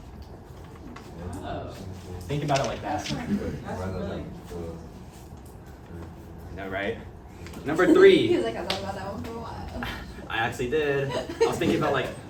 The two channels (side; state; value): both; identical; correlation 1.00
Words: Oh. Think about it like that. That's really. No, right? Number He 3. was like, I thought about that one for a while. I actually did. I was thinking about like,